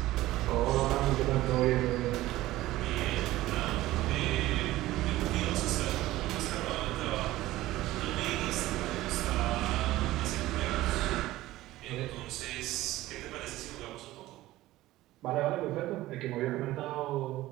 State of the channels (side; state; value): left; quieter; 16.5 dB